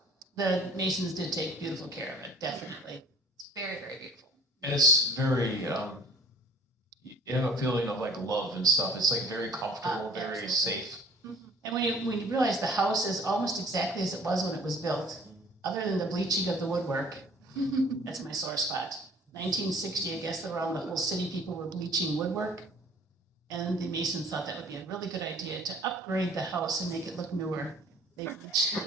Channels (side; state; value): both; normal; correlation 0.51